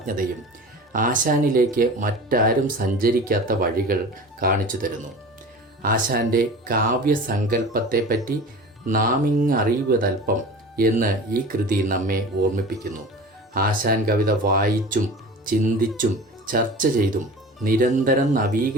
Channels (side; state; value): both; normal; correlation 0.37